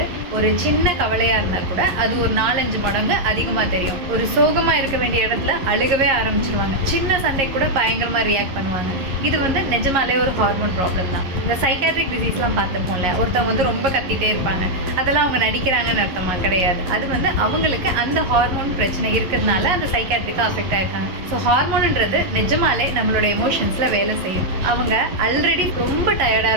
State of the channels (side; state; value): left; late; 11 ms